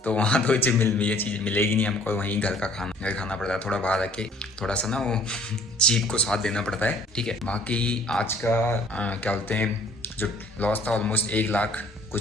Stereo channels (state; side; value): normal; both; correlation 0.57